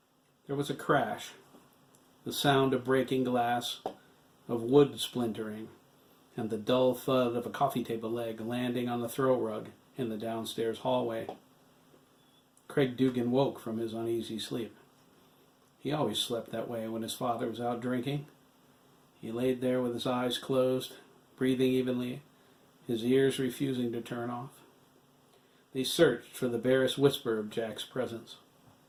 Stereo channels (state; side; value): identical; both; correlation 1.00